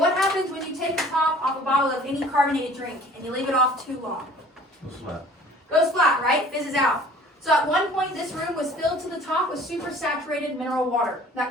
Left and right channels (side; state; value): both; normal; correlation 0.50